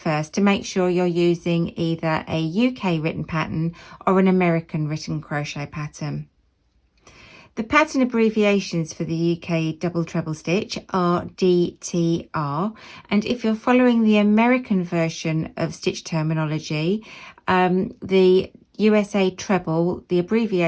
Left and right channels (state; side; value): identical; both; correlation 1.00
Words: to make sure you're using either a UK written pattern or an American written crochet pattern. The pattern abbreviations for the UK double treble stitch are DTR, and if you're following the American version of stitch terminology, the USA treble, the